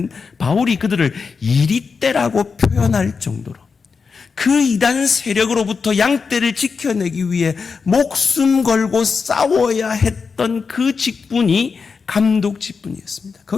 바울이 그들을 이리떼라고 표현할 정도로 그 이단 세력으로부터 양떼를 지켜내기 위해 목숨 걸고 싸워야 했던 그 직분이 감독 직분이었습니다.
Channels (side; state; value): right; quieter; 5.2 dB